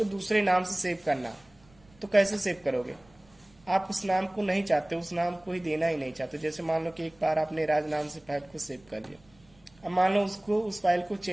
दूसरे नाम से सेव करना, तो कैसे सेव करोगे? आप उस नाम को नहीं चाहते, उस नाम को ही देना ही नहीं चाहते। जैसे मान लो कि एक बार आपने राज नाम से फाइल को सेव कर लिया, अब मान लो उसको उस फाइल को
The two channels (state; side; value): noise; right; rumble, 30 dB below the sound